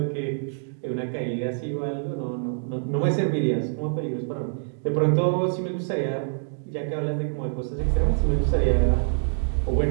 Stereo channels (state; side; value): silent; left; digital silence